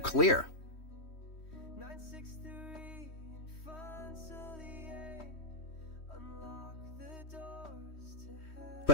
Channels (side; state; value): right; late; 3.1 ms